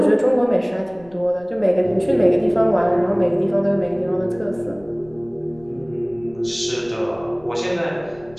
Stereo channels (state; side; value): noise; left; rumble, 26 dB below the sound